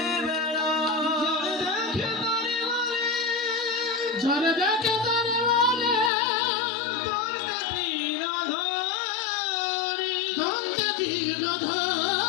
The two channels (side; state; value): right; drops out; at 6.1 s